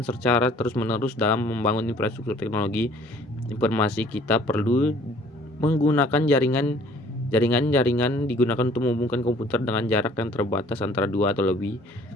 secara terus-menerus. Dalam membangun infrastruktur teknologi informasi, kita perlu menggunakan jaringan digunakan untuk menghubungkan komputer dengan jarak yang terbatas antara dua atau lebih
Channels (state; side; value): normal; both; correlation 0.55